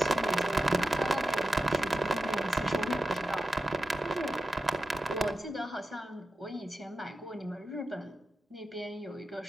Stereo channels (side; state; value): both; normal; correlation 0.90